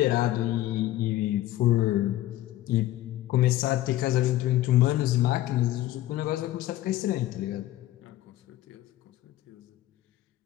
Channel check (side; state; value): right; quieter; 14.8 dB